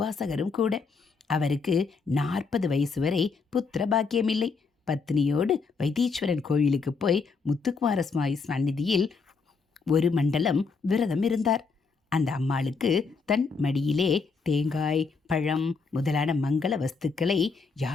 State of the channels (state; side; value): quieter; right; 4.7 dB